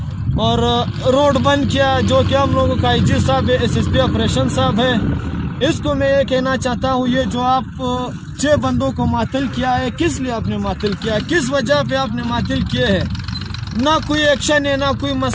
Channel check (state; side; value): identical; both; correlation 1.00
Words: और रोड बंद किया। जो कि हम लोगों का IG साहब है, SSP ऑपरेशन साहब है, इसको मैं ये कहना चाहता हूँ, ये जो आप 6 बंदों को मातल किया है, किस लिए आपने मातल किया, किस वजह पे आपने मातल किए हैं? ना कोई एक्शन है, ना कोई